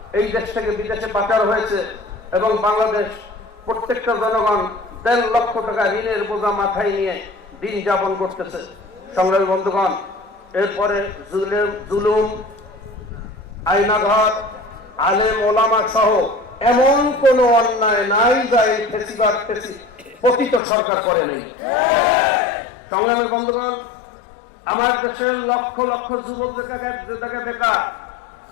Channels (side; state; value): right; drops out; at 20.6 s